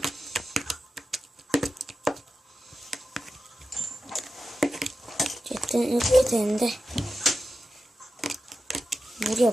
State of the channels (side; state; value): both; normal; correlation 0.91